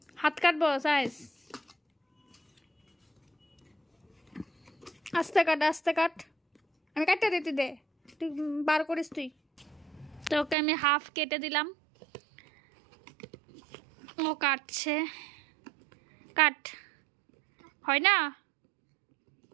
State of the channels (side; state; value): left; drops out; at 10.6 s